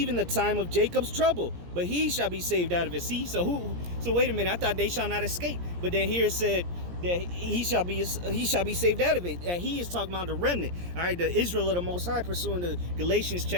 the time of Jacob's trouble, but he shall be saved out of it." See, so wait a minute, I thought they shall not escape, but then here it said that he shall be saved out of it. That he is talking about the remnant. All right, the Israel of the Most High, pursuing the Galatians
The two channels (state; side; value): late; left; 17 ms